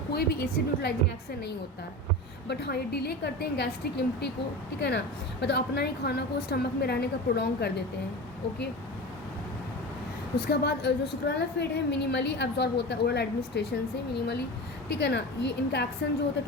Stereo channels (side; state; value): both; normal; correlation 0.29